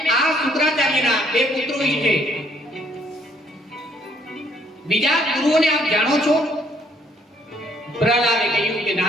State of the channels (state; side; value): normal; both; correlation 0.66